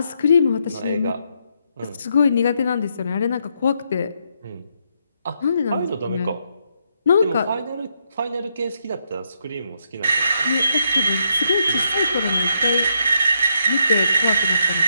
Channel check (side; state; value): both; inverted; correlation -0.77